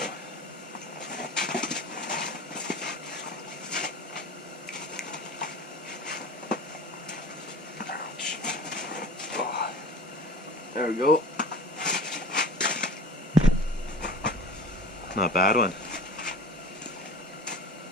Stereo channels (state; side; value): normal; both; correlation 0.38